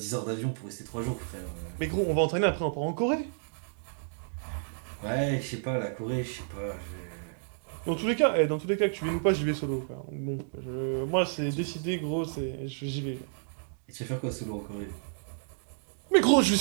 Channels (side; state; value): left; silent; digital silence